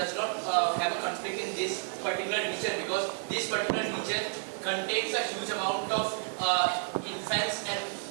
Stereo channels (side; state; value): left; silent; 57 dB below the other